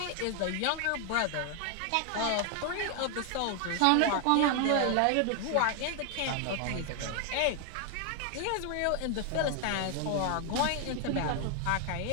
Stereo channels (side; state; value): both; different; correlation 0.00